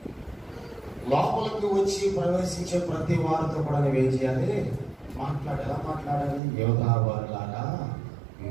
లోపలికి వచ్చి ప్రవేశించే ప్రతి వారితో కూడా నువ్వేం చేయాలి? ఎలా మాట్లాడాలి? యోధావారులారా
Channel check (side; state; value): left; drops out; at 6.4 s